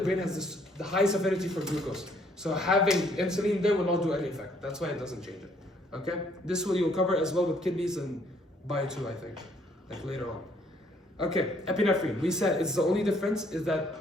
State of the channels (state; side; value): normal; both; correlation 0.65